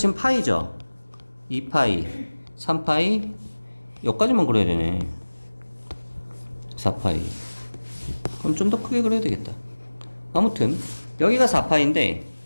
파이죠? 2파이, 3파이, 여기까지만 그려야 되네. 4파이. 그럼 좀 더 크게 그려야 되겠다. 아무튼 여기가 4파인데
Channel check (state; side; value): inverted; both; correlation -1.00